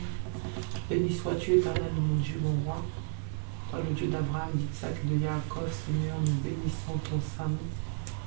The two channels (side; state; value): left; silent; digital silence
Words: Béni sois-tu, éternel, mon Dieu, mon roi. Toi, le Dieu d'Abraham, d'Isaac et de Jacob, Seigneur, nous bénissons ton saint nom.